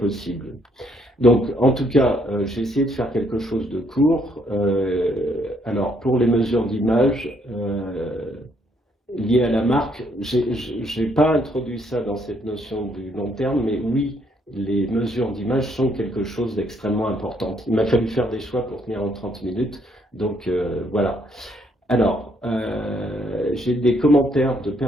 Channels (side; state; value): both; normal; correlation 0.70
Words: Donc, en tout cas, j'ai essayé de faire quelque chose de court. Alors, pour les mesures d'image liées à la marque, je n'ai pas introduit ça dans cette notion du long terme, mais oui, les mesures d'image sont quelque chose d'extrêmement important. Il m'a fallu faire des choix pour tenir en 30 minutes, donc voilà. Alors, j'ai des commentaires de